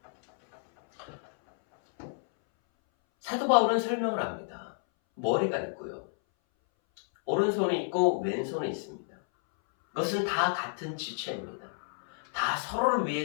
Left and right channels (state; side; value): silent; right; 58 dB below the other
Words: 사도 바울은 설명을 합니다. 머리가 있고요. 오른손이 있고 왼손이 있습니다. 그것은 다 같은 지체입니다. 다 서로를